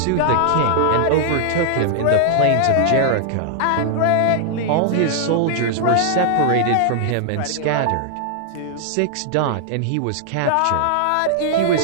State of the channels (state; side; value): different; both; correlation -0.01